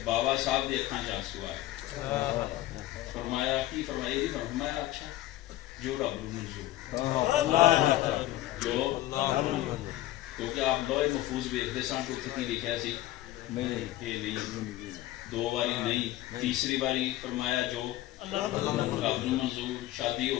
بابا صاحب دی اکھاں چ آنسو آئے فرمایا کی فرمایا یہ فرمایا اچھا جو رب نو منظور جو کیونکہ آپ لوہے محفوظ ویکھدے سن تو کی لکھیا سی نہیں دو باری نہیں تیسری باری فرمایا جو رب نو منظور شادی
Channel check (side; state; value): right; quieter; 15.4 dB